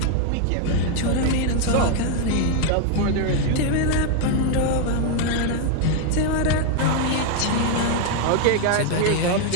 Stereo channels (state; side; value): different; both; correlation 0.01